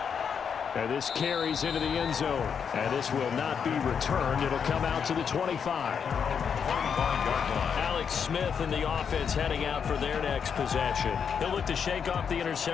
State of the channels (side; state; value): right; quieter; 7.0 dB